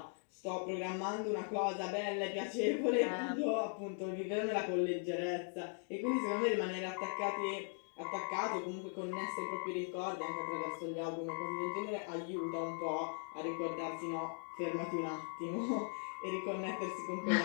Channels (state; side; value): silent; right; 51 dB below the other